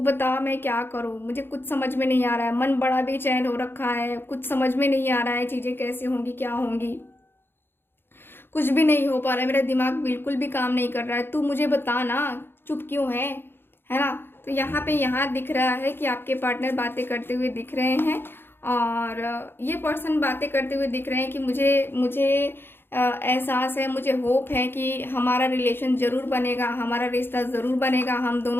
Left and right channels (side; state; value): right; late; 0.10 ms